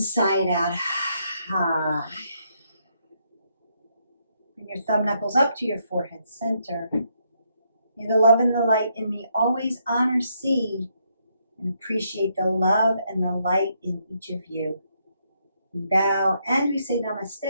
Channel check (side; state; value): both; inverted; correlation -0.76